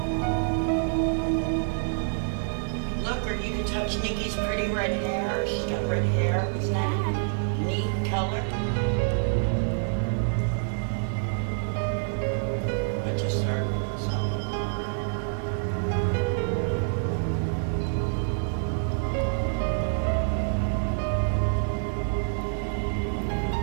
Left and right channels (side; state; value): left; silent; digital silence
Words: Look, or you can touch Nikki's pretty red hair. She's got red hair. Isn't that a neat color? I just heard some.